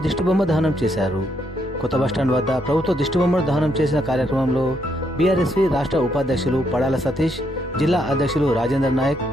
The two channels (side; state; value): both; normal; correlation 0.75